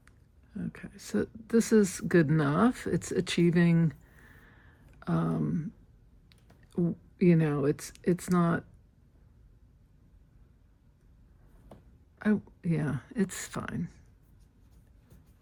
Okay, so this is good enough. It's achieving. It's not. Yeah, it's fine.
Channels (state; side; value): identical; both; correlation 1.00